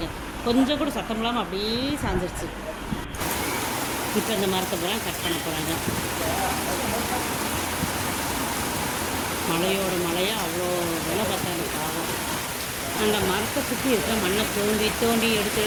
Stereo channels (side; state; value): both; identical; correlation 1.00